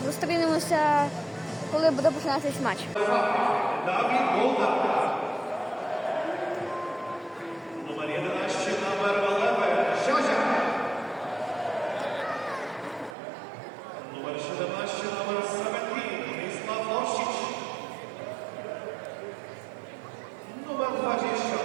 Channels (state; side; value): drops out; left; at 13.2 s